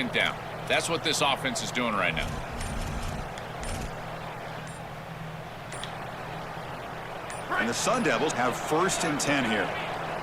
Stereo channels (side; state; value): both; identical; correlation 1.00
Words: down. That's what this offense is doing right now. And the Sun Devils have 1st and 10 here.